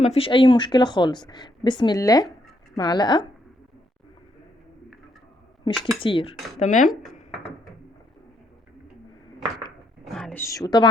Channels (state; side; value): normal; both; correlation 0.74